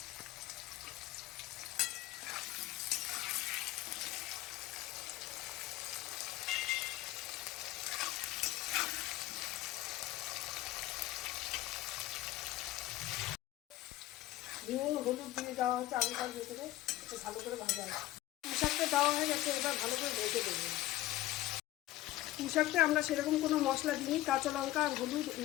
নুন হলুদ দিয়ে দেওয়া হচ্ছে আলুটার ভেতরে, ভালো করে ভাজা হবে। পুঁই শাকটা দেওয়া হয়ে গেছে, এবার ভালো করে ভেজে দেবো। পুঁই শাকটা আমরা সেরকম কোনো মশলা দিইনি, কাঁচা লঙ্কা আর হলুদ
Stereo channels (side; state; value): right; quieter; 16.0 dB